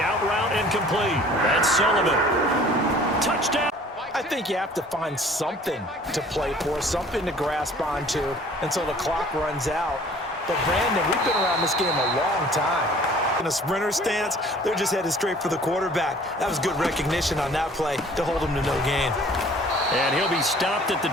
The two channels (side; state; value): both; normal; correlation 0.51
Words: out route incomplete. That's Sullivan. Touchdown. I think you have to find something to play for, something to grasp onto until the clock runs out. But Brandon, we've been around this game a long time. In a sprinter stance, they're just headed straight for the quarterback. That was good recognition on that play to hold him to no gain. And he'll be stopped at the